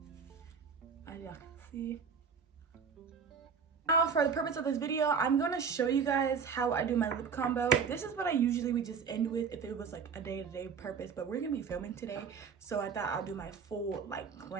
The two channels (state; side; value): quieter; left; 6.1 dB